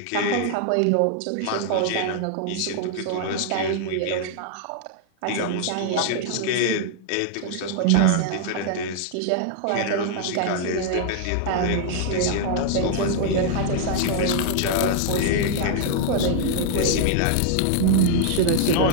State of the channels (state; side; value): different; both; correlation 0.00